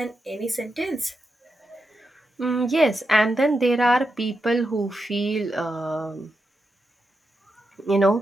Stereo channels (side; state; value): both; normal; correlation 0.87